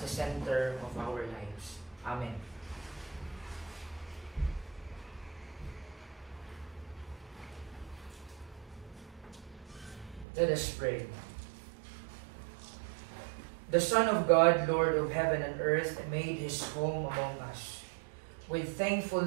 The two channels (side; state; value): left; drops out; at 10.2 s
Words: the center of our lives. Amen. Let us pray. The Son of God, Lord of heaven and earth, made His home among us. With